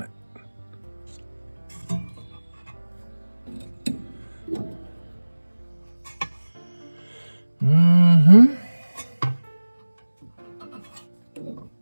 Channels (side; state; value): both; inverted; correlation -1.00